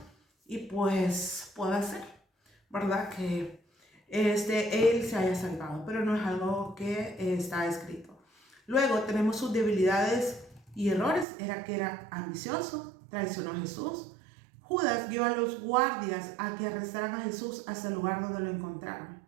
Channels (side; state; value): left; drops out; at 11.2 s